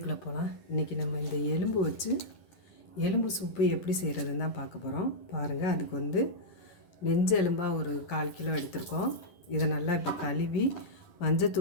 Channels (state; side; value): late; right; 10 ms